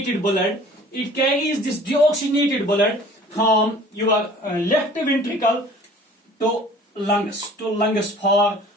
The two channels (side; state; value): both; normal; correlation 0.48